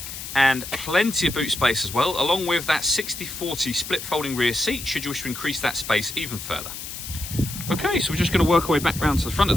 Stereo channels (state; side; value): noise; left; hiss, 9 dB below the sound